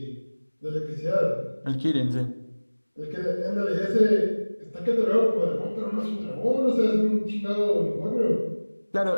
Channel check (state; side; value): inverted; both; correlation -1.00